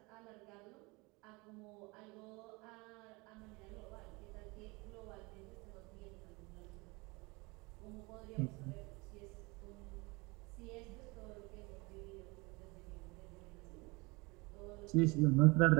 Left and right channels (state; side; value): quieter; left; 25.9 dB